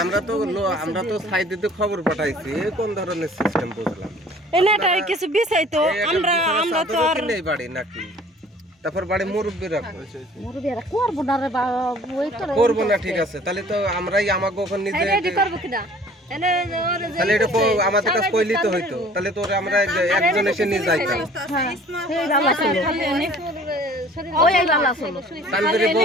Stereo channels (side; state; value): both; normal; correlation 0.51